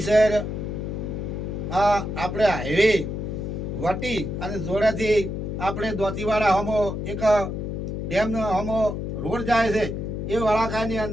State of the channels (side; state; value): left; noise; hum, 4 dB below the sound